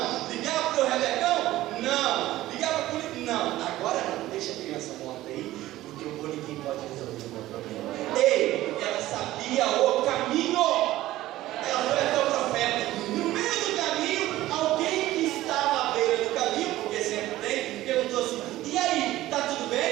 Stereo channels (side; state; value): left; quieter; 15.7 dB